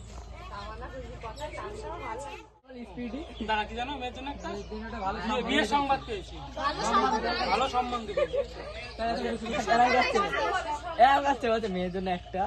দাঁড়া, কি জানো মেয়ের জন্য একটা বিয়ের সংবাদ পেয়েছি। ভালো সম্বন্ধ পেয়েছি। মেয়ের জন্য একটা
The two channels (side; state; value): both; identical; correlation 1.00